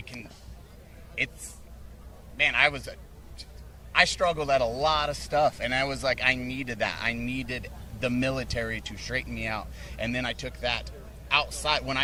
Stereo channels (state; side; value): identical; both; correlation 1.00